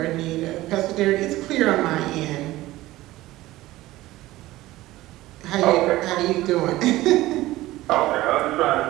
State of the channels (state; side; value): quieter; left; 17.2 dB